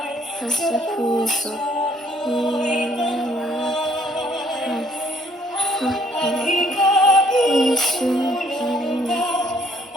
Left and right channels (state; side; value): normal; both; correlation 0.64